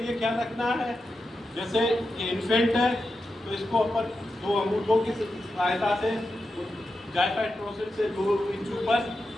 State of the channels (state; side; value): normal; both; correlation 0.89